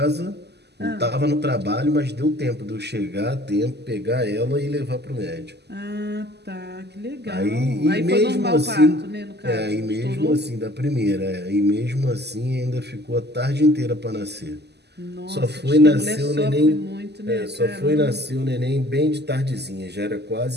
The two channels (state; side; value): late; left; 0.49 ms